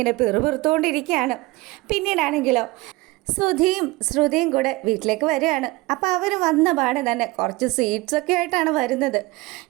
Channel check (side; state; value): left; quieter; 21.9 dB